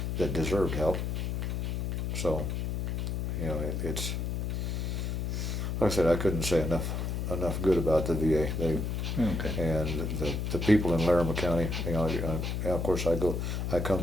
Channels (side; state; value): left; noise; hum, 1 dB below the sound